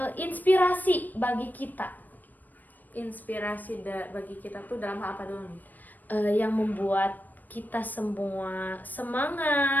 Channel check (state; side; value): late; right; 0.086 ms